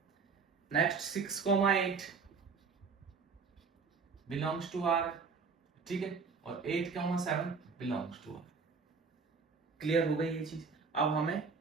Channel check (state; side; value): quieter; left; 5.1 dB